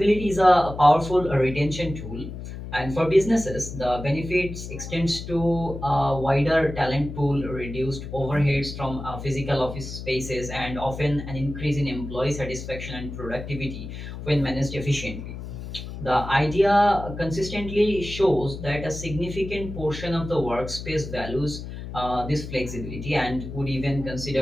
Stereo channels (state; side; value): noise; left; hum, 9 dB below the sound